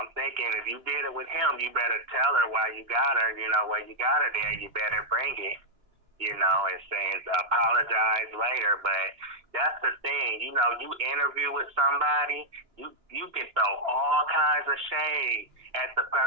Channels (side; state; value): left; late; 2.9 ms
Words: thinking, if you did it with him, you better tell her why you got her. Why you got her there. You better bring it. And saying apologize later. But that's the thing. You interview with somebody, you can throw all kinds of shade at the